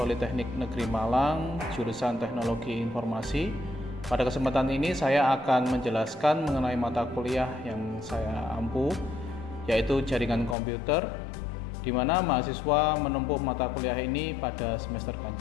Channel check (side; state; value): right; drops out; at 10.6 s